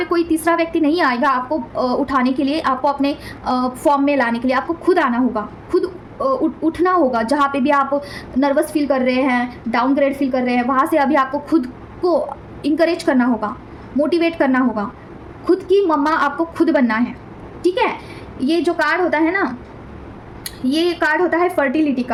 कोई तीसरा व्यक्ति नहीं आएगा आपको उठाने के लिए, आपको अपने फॉर्म में लाने के लिए आपको खुद आना होगा, खुद उठना होगा। जहाँ पे भी आप नर्वस फील कर रहे हैं, डाउनग्रेड फील कर रहे हैं, वहाँ से अभी आपको खुद को इंकरेज करना होगा, मोटिवेट करना होगा, खुद की मम्मा आपको खुद बनना है, ठीक है। ये जो कार्ड होता है ना, ये कार्ड होता है फर्टिलिटी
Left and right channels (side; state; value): both; identical; correlation 1.00